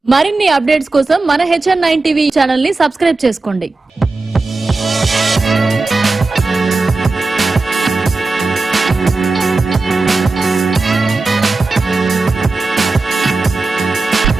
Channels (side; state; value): left; quieter; 3.5 dB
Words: మరిన్ని అప్డేట్స్ కోసం మన HN9 టీవీ ఛానల్ ని సబ్స్క్రైబ్ చేసుకోండి.